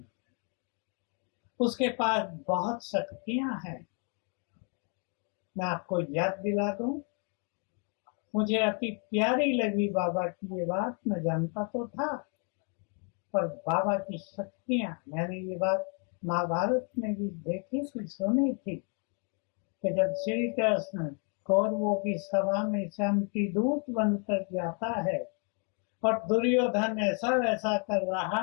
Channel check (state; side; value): quieter; right; 39.8 dB